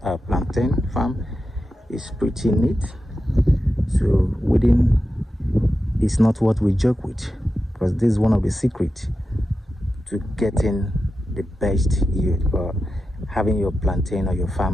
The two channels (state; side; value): normal; both; correlation 0.91